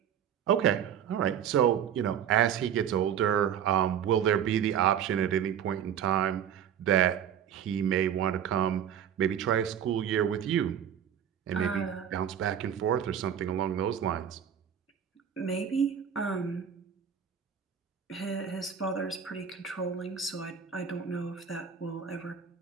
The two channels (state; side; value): quieter; left; 8.8 dB